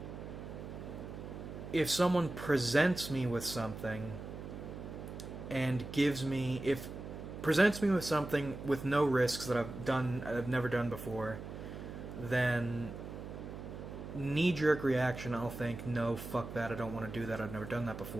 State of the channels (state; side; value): noise; right; hum, 10 dB below the sound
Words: if someone presents me with something and presents me with something with no risks that I've never done before, then knee-jerk reaction, I'll think, no, fuck that, I don't want to do that, I've never done that